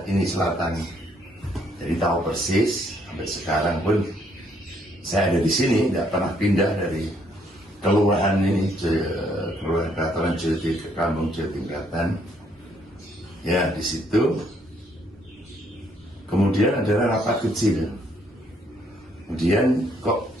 ini selatan. Jadi tahu persis sampai sekarang pun saya ada di sini, tidak pernah pindah dari kelurahan ini, kelurahan Katalan Jati ke Kampung Jatingkatan. Ya, di situ. Kemudian adalah rapat kecil. Kemudian kok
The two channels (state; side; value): normal; both; correlation 0.69